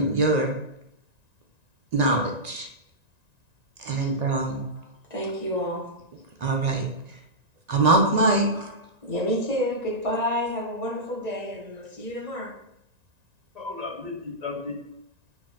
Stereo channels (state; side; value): late; left; 1.9 ms